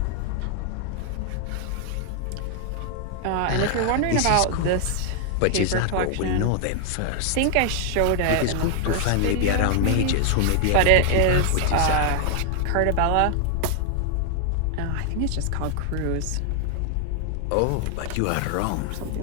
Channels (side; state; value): both; different; correlation 0.00